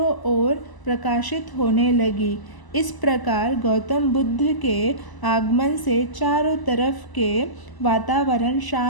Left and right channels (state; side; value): late; right; 1.0 ms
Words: ओर प्रकाशित होने लगी। इस प्रकार गौतम बुद्ध के आगमन से चारों तरफ के वातावरण